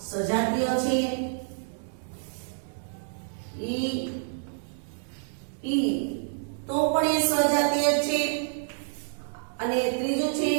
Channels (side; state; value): left; silent; 59 dB below the other